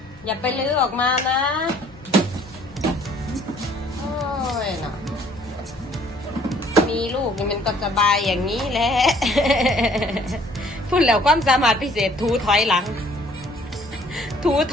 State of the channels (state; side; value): normal; both; correlation 0.59